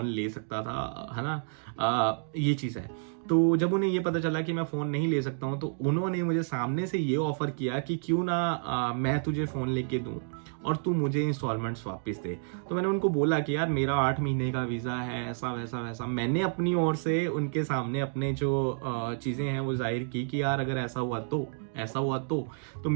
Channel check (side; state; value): left; silent; digital silence